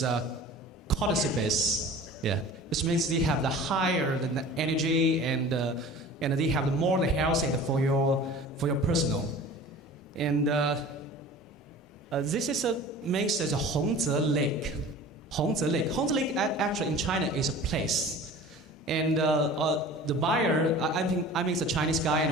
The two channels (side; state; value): both; normal; correlation 0.41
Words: cordyceps. Yeah, this means they have the higher the energy and they have the more the health and for your personal. And this is means as a Hongze Lake. Hongze Lake. Hongze Lake actually in China is a place. And the buyer, I mean it's a Chinese guy,